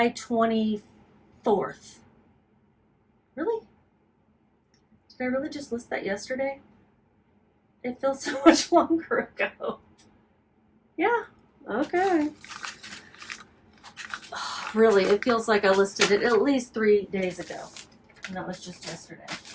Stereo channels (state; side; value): identical; both; correlation 1.00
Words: 24th. Really? Did I really just list that yesterday? It feels so much longer ago. Yeah, okay. Oh, really, it feels like I listed it at least 3 days ago. And that was just yesterday.